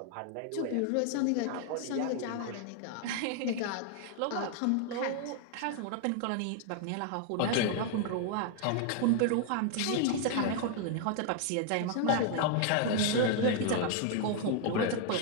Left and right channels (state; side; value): different; both; correlation 0.00